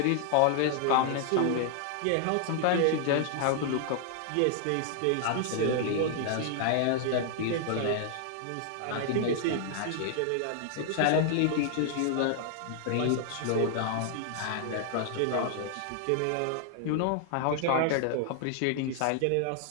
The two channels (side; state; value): both; different; correlation 0.00